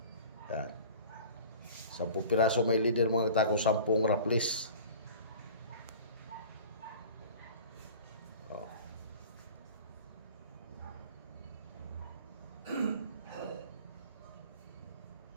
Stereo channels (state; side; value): inverted; both; correlation -0.41